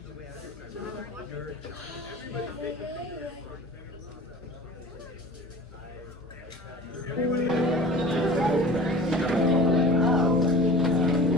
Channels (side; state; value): both; normal; correlation 0.40